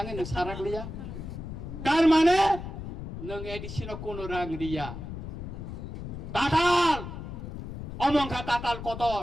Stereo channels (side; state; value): left; noise; rumble, 8 dB below the sound